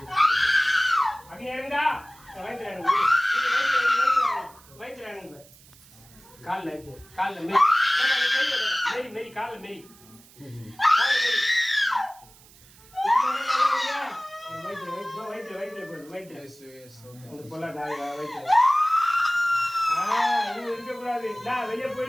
அப்படி இறங்குதா வயிற்றுல வயிற்றுல இறங்கு. காலில் இருக்கு, காலில் மேரி மேரி காலில் மேரி வயிற்றுல இருக்கக்கூடாது. வெளியே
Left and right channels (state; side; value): noise; right; hiss, 25 dB below the sound